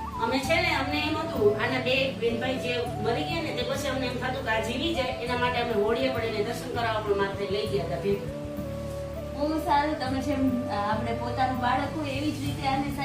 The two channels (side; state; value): both; identical; correlation 1.00